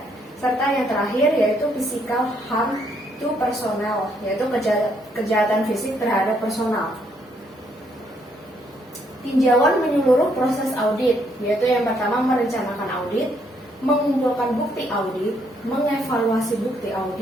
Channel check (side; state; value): both; normal; correlation 0.72